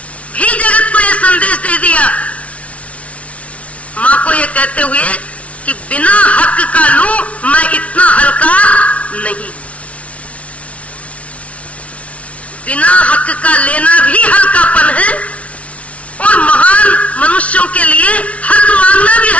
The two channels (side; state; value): right; late; 0.064 ms